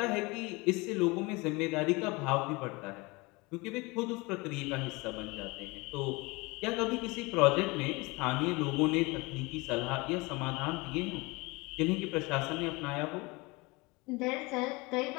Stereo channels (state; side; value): quieter; right; 25.0 dB